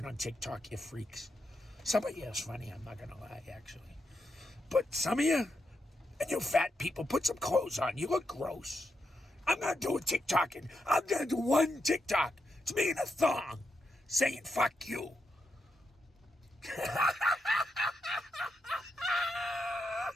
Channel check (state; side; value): normal; both; correlation 0.84